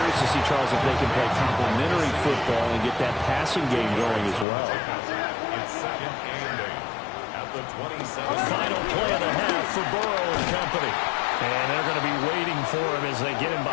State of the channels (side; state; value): right; drops out; at 4.5 s